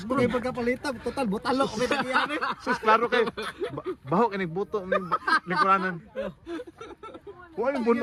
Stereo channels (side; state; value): both; identical; correlation 1.00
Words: kayo pagkapalitan, total butalok kami nagyan eh. Sus klaro kay baho kay buto ning kuranan. Huwag yung